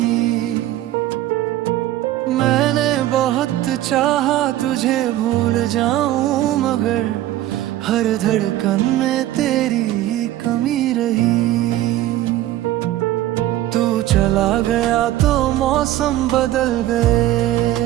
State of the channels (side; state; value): left; quieter; 14.2 dB